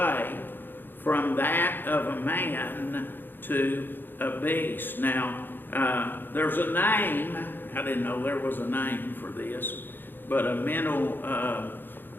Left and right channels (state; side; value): late; right; 0.096 ms